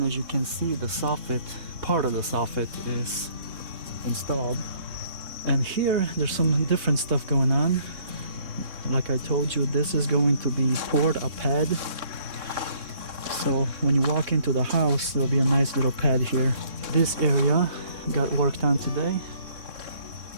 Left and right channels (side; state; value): left; late; 3.6 ms